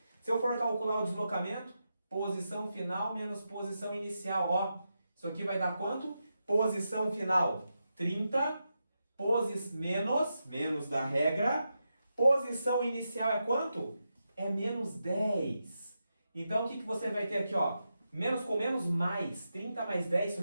Se eu for calcular o deslocamento, posição final menos posição inicial. Ó, isso aqui vai dar quanto? Posição final 30, menos da regra. Posição inicial é quanto? É menos 10. Então, o que você vai ter aqui? Ó? Menos com menos, mais. 30 mais 10, isso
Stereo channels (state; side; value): inverted; both; correlation -0.87